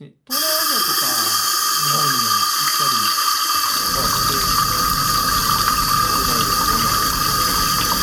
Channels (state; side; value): identical; both; correlation 1.00